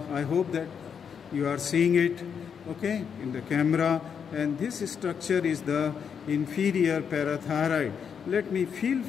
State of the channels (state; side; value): quieter; right; 7.1 dB